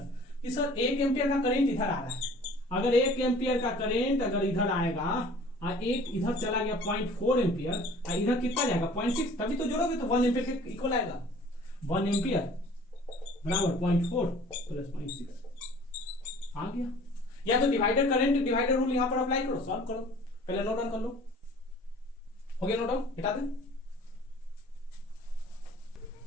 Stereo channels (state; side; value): normal; both; correlation 0.49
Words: कि सर 1 एम्पियर का करंट इधर आ रहा है, अगर 1 एम्पियर का करंट अगर इधर आएगा और एक इधर चला गया 0.4 एम्पियर और इधर कितना जाएगा 0.6, तभी तो जोड़ोगे तो 1 एम्पियर के इक्वल आएगा। 1 एम्पियर बराबर 0.4 प्लस 0.6 आ गया। या तो डिवाइडर करंट डिवाइडर रूल यहां पर अप्लाई करो, सॉल्व करो, पहले नोट डाउन कर लो। हो गया नोट डाउन, हटा दे।